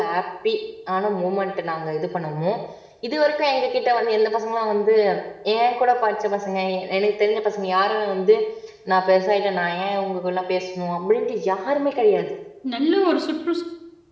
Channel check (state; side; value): identical; both; correlation 1.00